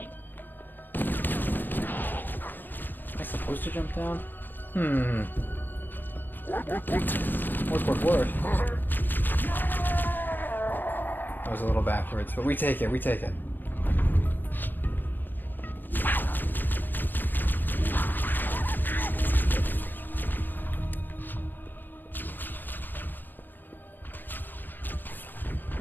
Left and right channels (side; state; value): right; late; 0.091 ms